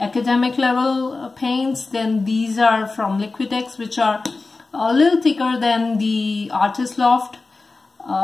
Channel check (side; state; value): right; quieter; 3.7 dB